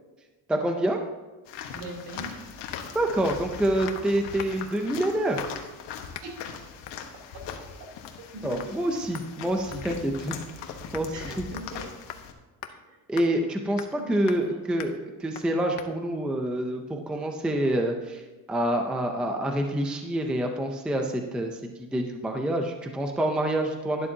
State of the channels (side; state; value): both; normal; correlation 0.69